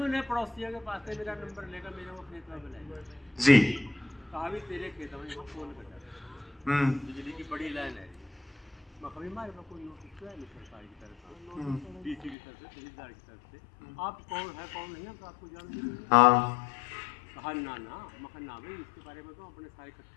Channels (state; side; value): drops out; right; at 12.4 s